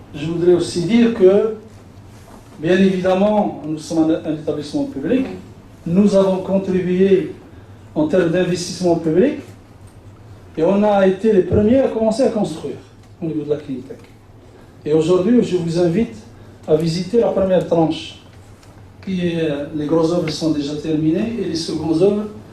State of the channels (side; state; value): both; identical; correlation 1.00